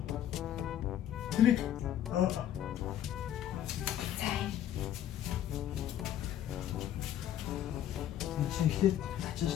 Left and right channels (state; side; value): quieter; right; 11.1 dB